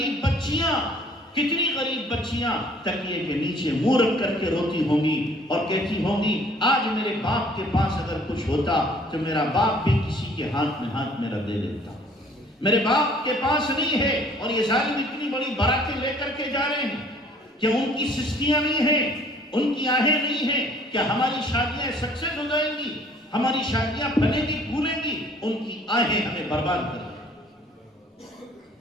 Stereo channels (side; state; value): both; normal; correlation 0.56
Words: بچیاں تکیے کے نیچے منہ رکھ کر کے روتی ہوں گی اور کہتی ہوں گی آج میرے باپ کے پاس اگر کچھ ہوتا تو میرا باپ بھی کسی کے ہاتھ میں ہاتھ میرا دے دیتا، میرے باپ کے پاس نہیں ہے، اور یہ ظالم اتنی بڑی باراتیں لے کر کے جا رہے ہیں کہ ان کی سستیاں نہیں ہیں، ان کی آہیں نہیں ہیں کہ ہماری شادیاں سکسیس ہو جائیں گی، ہماری شادیاں پھلیں گی پھولیں گی، ان کی آہیں ہمیں برباد کر دیں۔